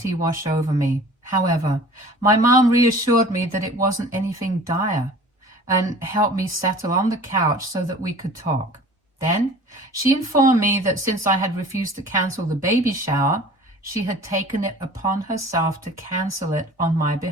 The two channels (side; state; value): both; normal; correlation 0.44